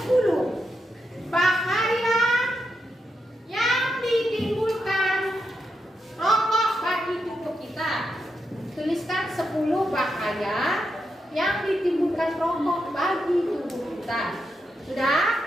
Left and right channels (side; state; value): both; normal; correlation 0.85